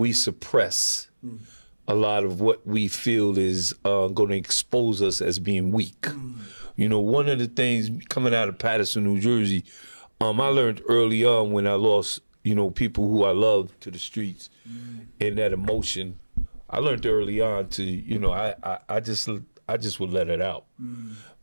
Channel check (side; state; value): both; inverted; correlation -1.00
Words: suppress a lot of what we feel is going to expose us as being weak. You know, one of the things coming out of Paterson, New Jersey, I learned early on when I lost, you know, people who I loved to the streets and that emotion. I learned early on to, you know, I just would let it out.